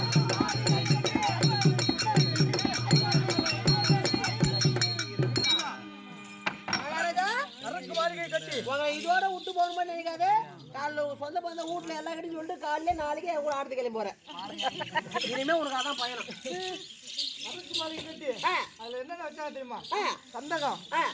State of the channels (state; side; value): identical; both; correlation 1.00